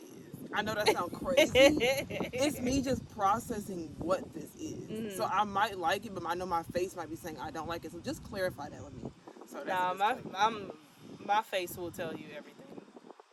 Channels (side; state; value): both; identical; correlation 1.00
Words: is. I know that sounds crazy. It's me just processing what this is. So I might like it, but I know my face might be saying I don't like it. So just clarify that with me. So that's my face will tell you everything.